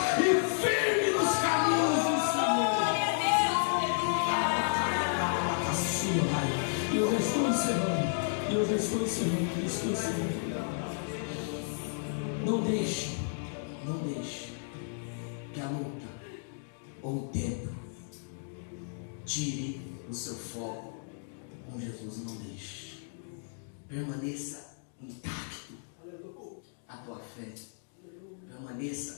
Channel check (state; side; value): silent; right; digital silence